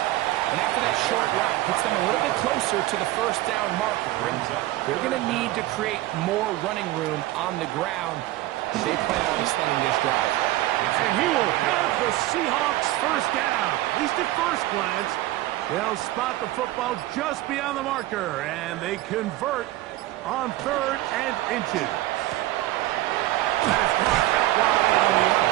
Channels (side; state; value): left; quieter; 16.6 dB